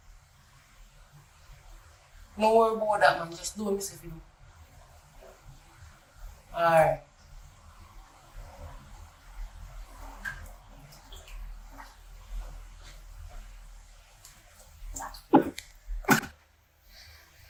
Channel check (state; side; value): identical; both; correlation 1.00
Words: No worry about that, man. Just do what me say for you. Alright.